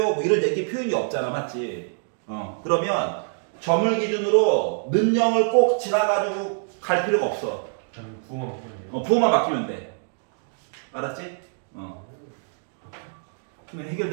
뭐 이런 얘기 표현이 없잖아, 맞지? 그러면 점을 기준으로 는 0을 꼭 지나가지고 갈 필요가 없어. 그냥 부호만 바꾸면 부호만 바뀌면 돼. 알았지? 그러면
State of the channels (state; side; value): silent; left; digital silence